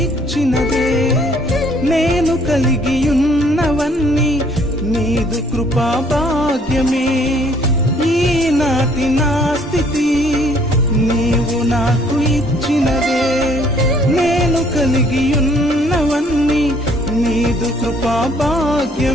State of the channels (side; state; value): both; normal; correlation 0.62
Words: ఇచ్చినదే, నేను కలిగి ఉన్నవన్నీ నీదు కృపా భాగ్యమే. ఈనాటి నా స్థితి నీవు నాకు ఇచ్చినదే, నేను కలిగి ఉన్నవన్నీ నీదు కృపా